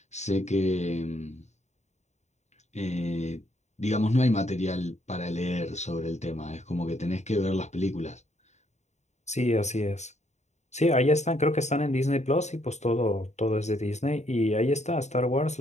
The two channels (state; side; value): late; right; 0.33 ms